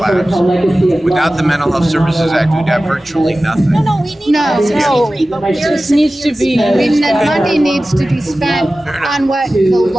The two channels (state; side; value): normal; both; correlation 0.96